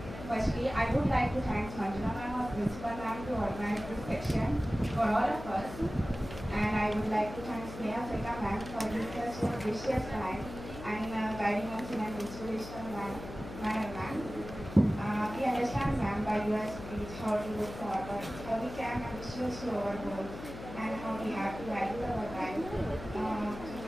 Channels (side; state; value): left; noise; hum, 11 dB below the sound